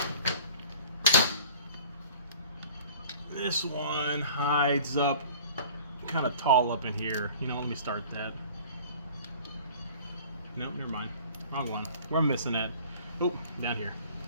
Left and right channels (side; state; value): both; inverted; correlation -0.46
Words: This one hides up kind of tall up in here. You know, let me start that. Nope, never mind. Wrong one. Where I'm missing it. Oh, down here.